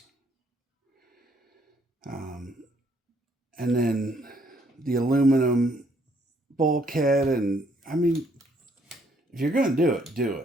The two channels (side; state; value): both; normal; correlation 0.68